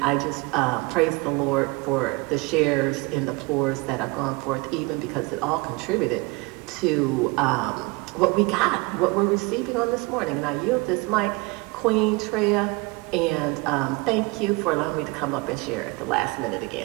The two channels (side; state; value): left; quieter; 25.3 dB